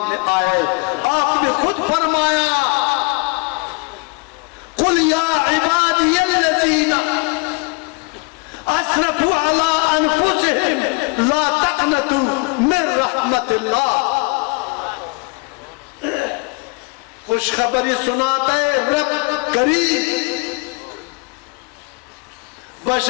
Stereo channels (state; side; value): quieter; right; 29.3 dB